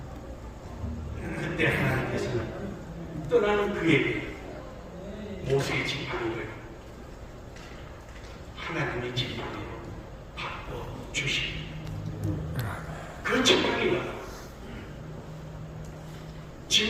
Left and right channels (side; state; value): both; identical; correlation 1.00